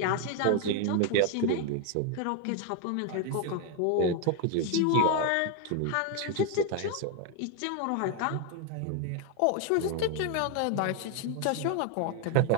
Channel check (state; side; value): different; both; correlation 0.01